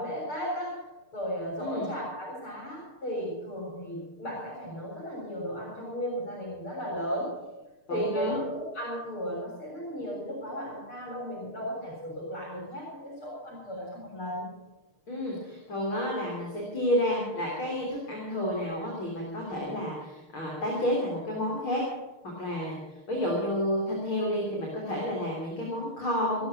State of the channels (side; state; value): right; late; 6.6 ms